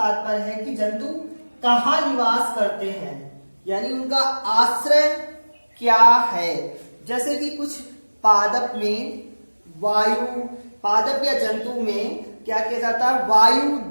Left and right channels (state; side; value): inverted; both; correlation -1.00